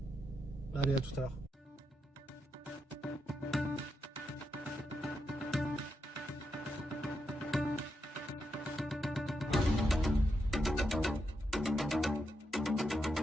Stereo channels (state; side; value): normal; both; correlation 0.84